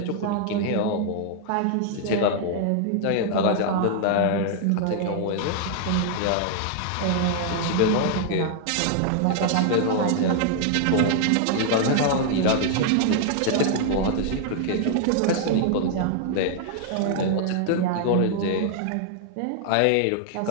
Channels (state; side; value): different; both; correlation 0.00